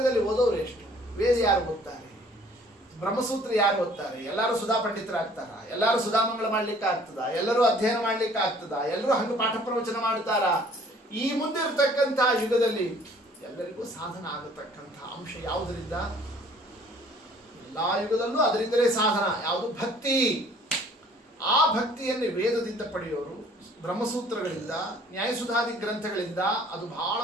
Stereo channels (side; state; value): both; normal; correlation 0.55